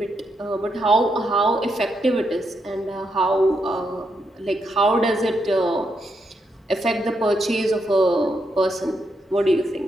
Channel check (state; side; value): normal; both; correlation 0.80